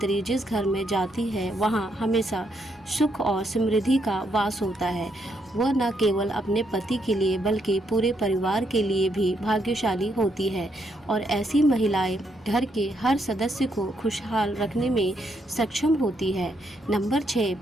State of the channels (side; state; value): both; normal; correlation 0.76